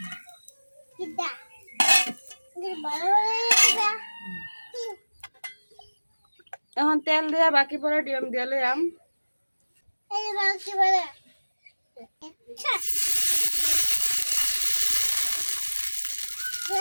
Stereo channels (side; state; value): both; inverted; correlation -1.00